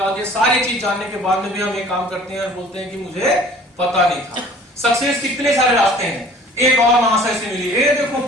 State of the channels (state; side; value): normal; both; correlation 0.50